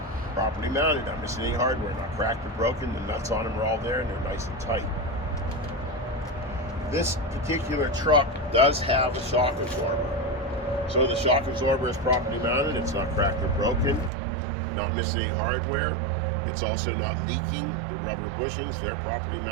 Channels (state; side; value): drops out; left; at 14.1 s